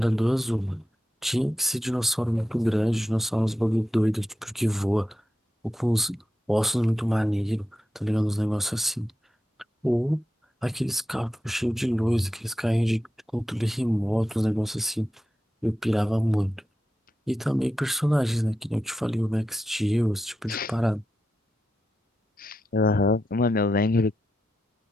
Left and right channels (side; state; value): both; normal; correlation 0.89